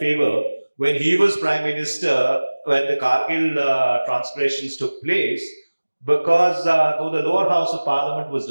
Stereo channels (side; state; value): both; inverted; correlation -1.00